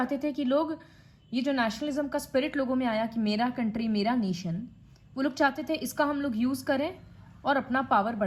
थे कि लोग, ये जो नेशनलिज्म का स्पिरिट लोगों में आया कि मेरा कंट्री मेरा नेशन, वो लोग चाहते थे इसका हम लोग यूज़ करें और अपना पावर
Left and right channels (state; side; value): identical; both; correlation 1.00